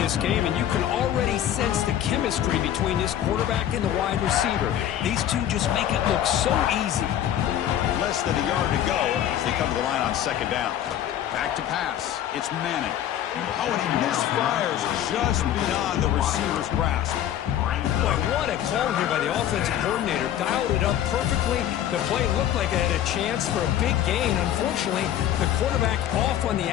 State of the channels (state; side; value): quieter; right; 11.1 dB